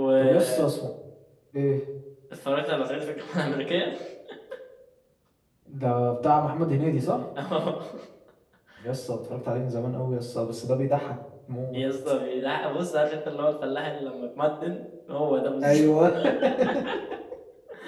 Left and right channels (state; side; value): identical; both; correlation 1.00